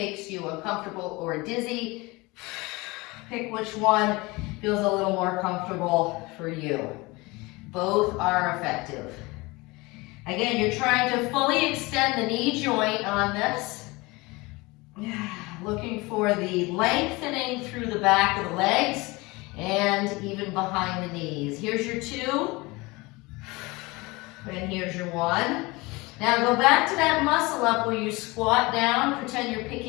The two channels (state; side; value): quieter; right; 23.5 dB